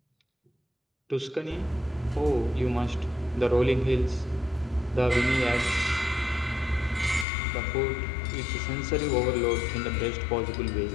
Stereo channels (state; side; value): drops out; right; at 7.2 s